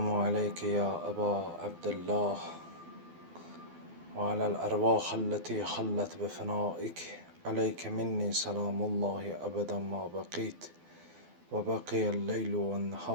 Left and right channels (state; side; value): late; left; 12 ms